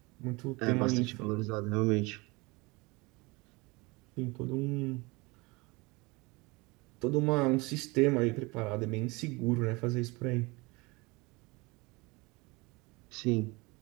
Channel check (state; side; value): quieter; left; 25.2 dB